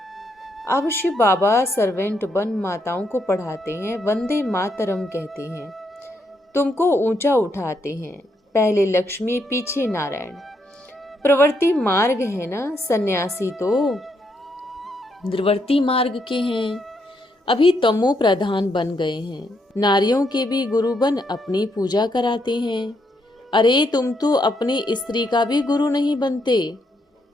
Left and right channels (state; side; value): normal; both; correlation 0.77